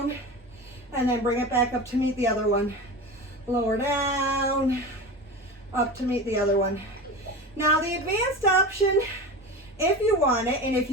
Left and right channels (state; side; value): normal; both; correlation 0.28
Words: and then bring it back up to meet the other one. Lower down, up to meet the other one. Now the advanced option, if you want it, and if